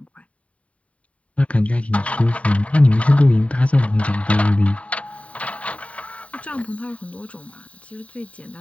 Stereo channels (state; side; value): late; right; 0.066 ms